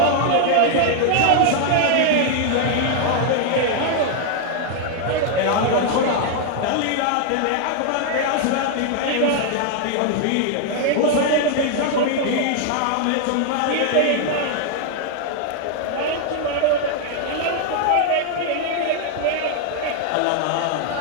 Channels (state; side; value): different; both; correlation 0.00